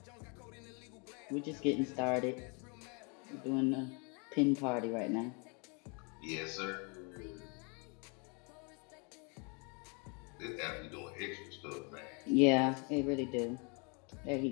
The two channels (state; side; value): quieter; right; 34.3 dB